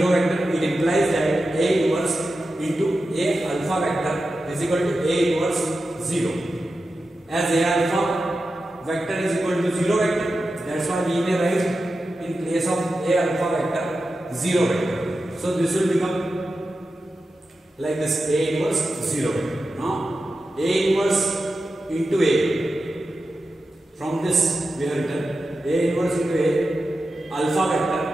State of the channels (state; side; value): normal; both; correlation 0.92